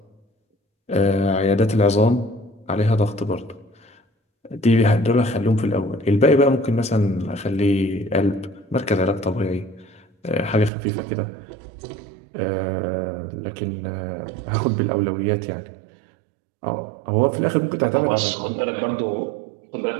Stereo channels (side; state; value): left; drops out; at 10.7 s